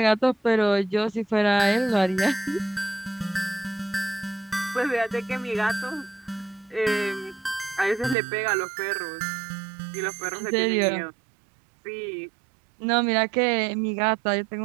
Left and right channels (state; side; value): drops out; left; at 8.2 s